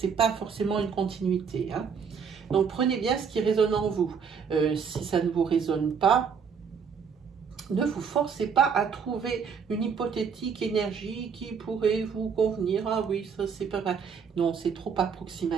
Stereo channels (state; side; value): quieter; left; 6.4 dB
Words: pas forcément une continuité. Hein. Donc prenez bien ce qui résonne en vous. Si ça ne vous résonne pas, ne vous forcez pas à trouver une hypothétique énergie qui pourrait vous convenir. Ah oui, ça c'est pas mal. Non, c'est trop